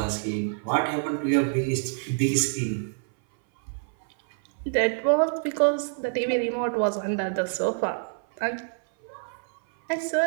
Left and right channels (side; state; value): left; silent; 58 dB below the other